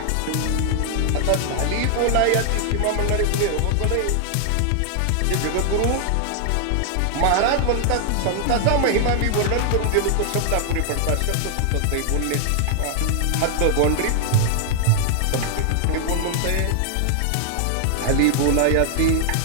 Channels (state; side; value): different; both; correlation 0.00